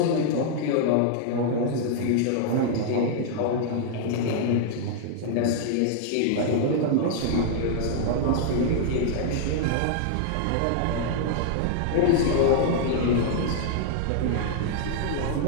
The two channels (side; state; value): both; different; correlation -0.01